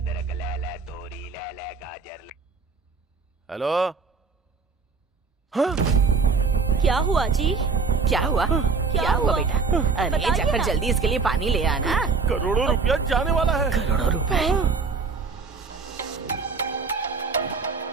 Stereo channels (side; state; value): left; quieter; 4.8 dB